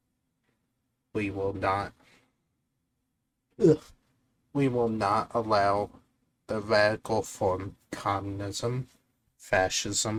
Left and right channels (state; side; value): identical; both; correlation 1.00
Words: we will not allow the radical form communism,